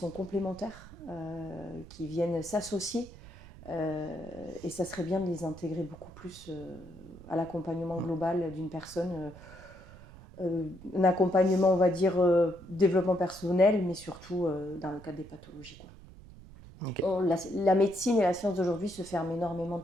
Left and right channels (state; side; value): noise; right; rumble, 19 dB below the sound